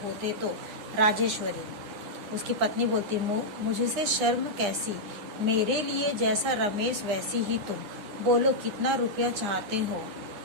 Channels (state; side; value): late; left; 9.8 ms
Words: तो राजेश्वरी, उसकी पत्नी बोलती, मुझसे शर्म कैसी, मेरे लिए जैसा रमेश वैसी ही तुम, बोलो कितना रुपया चाहते हो।